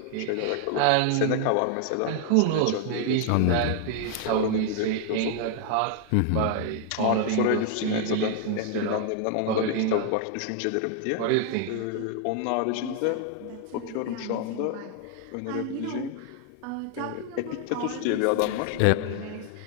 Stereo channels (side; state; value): both; different; correlation 0.00